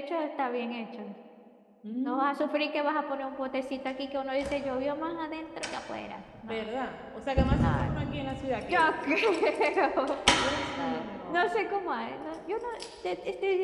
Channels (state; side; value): identical; both; correlation 1.00